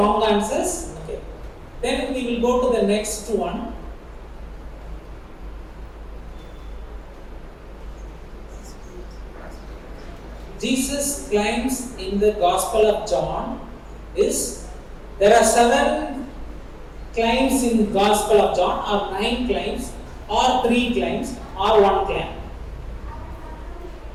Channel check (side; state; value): both; identical; correlation 1.00